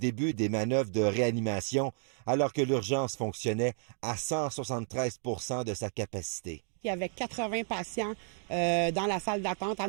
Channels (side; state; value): left; silent; 56 dB below the other